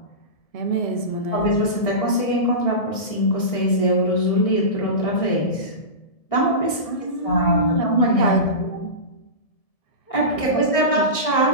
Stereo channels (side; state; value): right; late; 1.7 ms